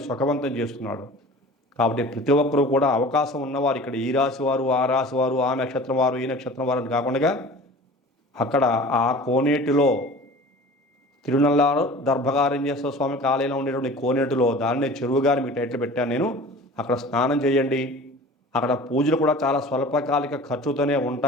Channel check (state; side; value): normal; both; correlation 0.41